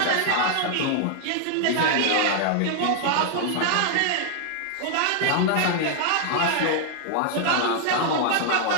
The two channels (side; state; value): both; different; correlation 0.00